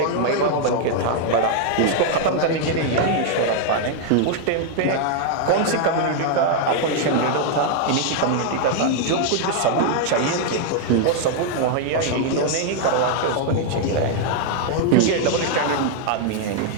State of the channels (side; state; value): both; different; correlation 0.00